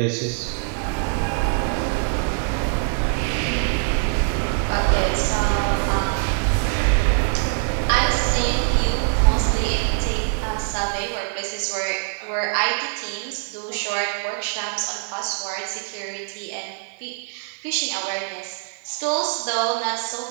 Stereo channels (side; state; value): left; silent; 56 dB below the other